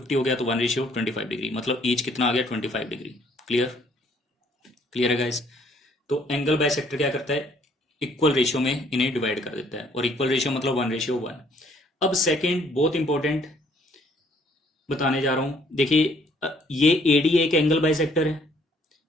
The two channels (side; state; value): both; normal; correlation 0.63